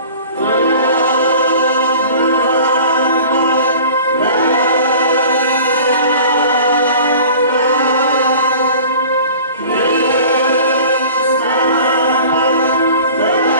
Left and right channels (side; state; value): both; inverted; correlation -0.43